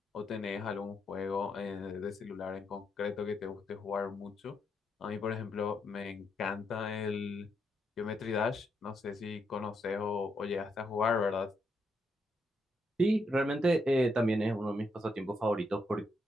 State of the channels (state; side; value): normal; both; correlation 0.79